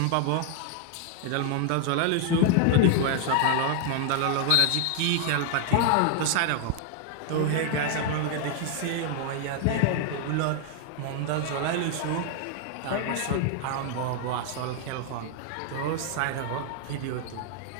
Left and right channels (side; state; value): both; different; correlation 0.00